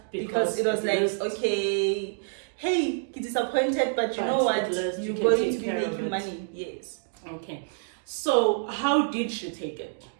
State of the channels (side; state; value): left; silent; digital silence